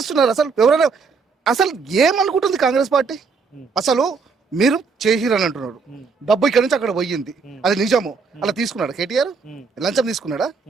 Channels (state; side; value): quieter; left; 5.0 dB